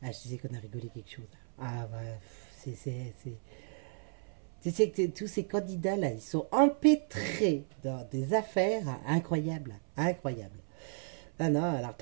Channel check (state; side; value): silent; left; 55 dB below the other